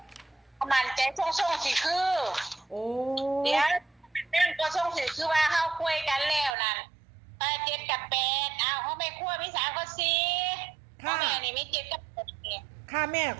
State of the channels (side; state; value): left; drops out; at 6.6 s